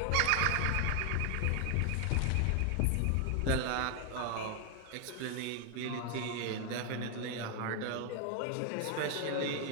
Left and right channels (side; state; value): both; different; correlation 0.01